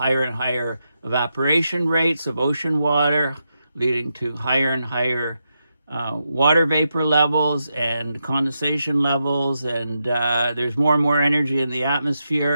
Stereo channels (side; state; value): both; inverted; correlation -0.85